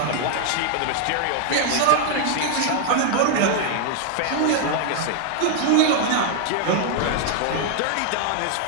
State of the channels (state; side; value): different; both; correlation 0.00